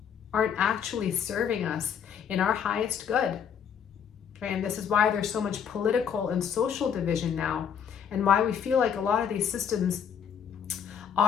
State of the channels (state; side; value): quieter; right; 7.8 dB